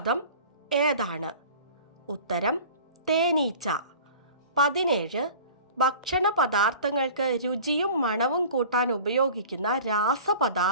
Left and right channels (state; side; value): inverted; both; correlation -0.43